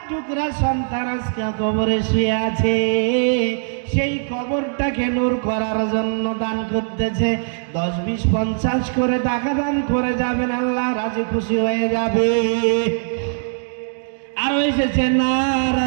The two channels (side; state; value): left; silent; digital silence